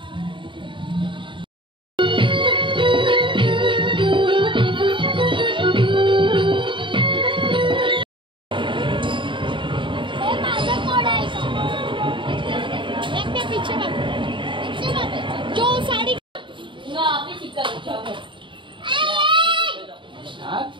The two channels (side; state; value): left; late; 0.24 ms